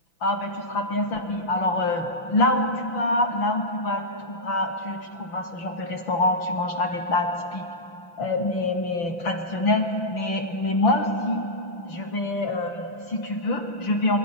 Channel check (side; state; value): right; late; 5.9 ms